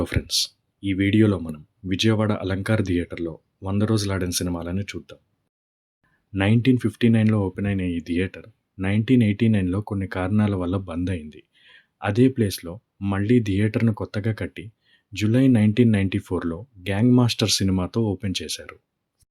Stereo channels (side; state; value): both; identical; correlation 1.00